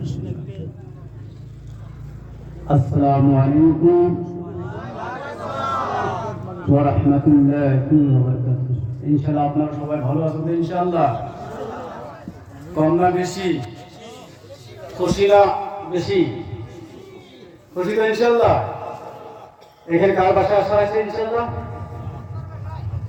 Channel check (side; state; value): both; identical; correlation 1.00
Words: السلام عليكم ورحمة الله وبركاته. إن شاء الله আপনারা সবাই ভালো আছেন ইনশাআল্লাহ। কম না বেশি, খুশি না বেশি, খুশি তো ইনশাআল্লাহ। এখানে কার বাসা আসা আছে ইনশাআল্লাহ?